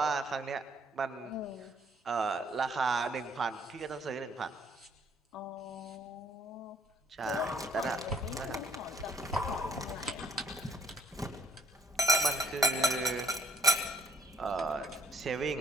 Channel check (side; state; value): both; normal; correlation 0.62